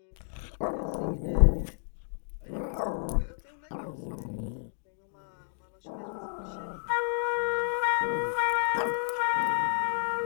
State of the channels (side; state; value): right; silent; digital silence